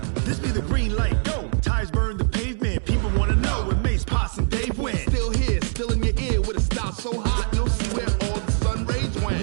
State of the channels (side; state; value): left; silent; digital silence